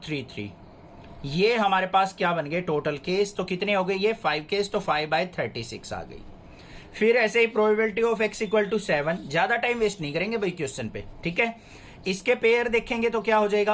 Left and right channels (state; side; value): identical; both; correlation 1.00